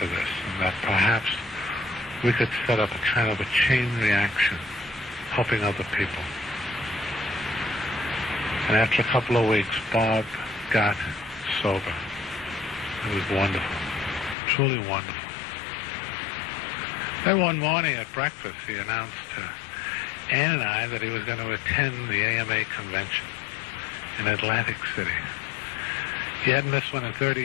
this, and that perhaps we could set up a kind of a chain reaction, helping other people. And after a couple of weeks, Bob got sober. It was wonderful, truly wonderful. Then one morning at breakfast, he announced to Ann and I that he was going to attend the AMA convention in Atlantic City. He hadn't missed one in 30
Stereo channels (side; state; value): right; drops out; at 14.4 s